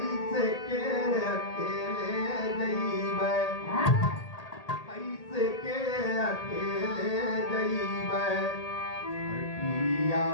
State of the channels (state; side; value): late; right; 1.8 ms